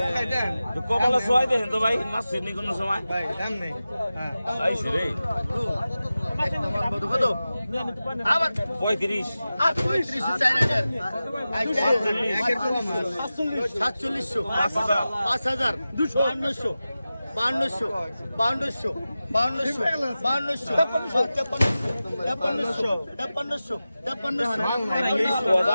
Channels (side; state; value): both; inverted; correlation -0.95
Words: তো কমলা সোয়াই দেন তো ভাই মাছ নি কোন সময় ভাই দাম নেই হ্যাঁ আইছে রে কত আবার 35 আর 35 4000 4700 5000 200 5200 5200